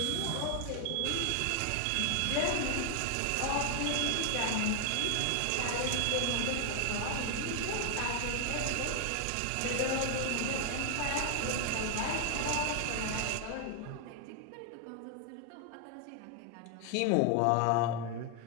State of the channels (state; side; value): different; both; correlation 0.00